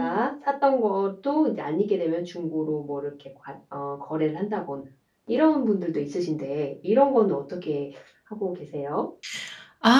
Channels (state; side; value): identical; both; correlation 1.00